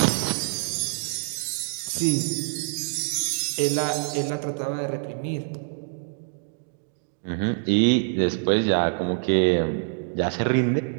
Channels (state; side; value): silent; left; digital silence